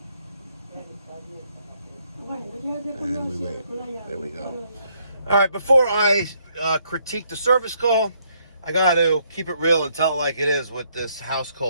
And we wait. There we go. All right, before I critique the service call, I got to keep it real and tell it like it is with this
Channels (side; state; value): both; inverted; correlation -0.71